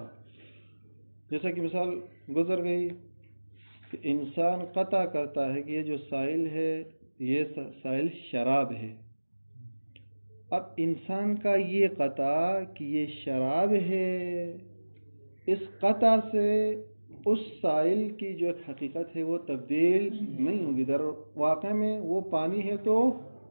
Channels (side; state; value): both; inverted; correlation -1.00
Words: جیسا کہ مثال گزر گئی کہ انسان قطع کرتا ہے کہ یہ جو سائل ہے یہ سائل شراب ہے. اب انسان کا یہ قطع کہ یہ شراب ہے، اس قطع سے اس سائل کی جو حقیقت ہے وہ تبدیل نہیں ہوگی. در واقع میں وہ پانی ہے تو